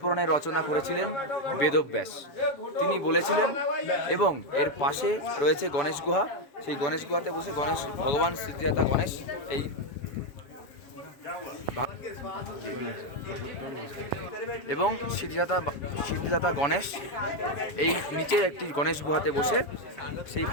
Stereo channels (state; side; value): late; right; 7.3 ms